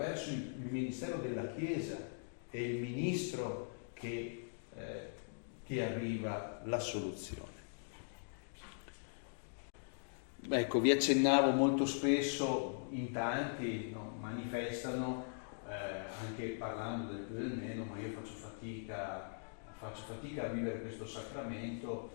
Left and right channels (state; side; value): silent; right; digital silence